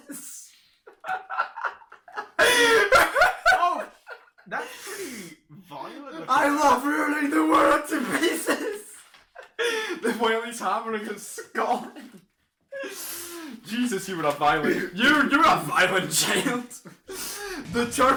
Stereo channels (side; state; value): both; identical; correlation 1.00